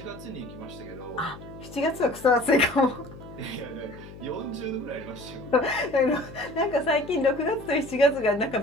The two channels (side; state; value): left; noise; hum, 16 dB below the sound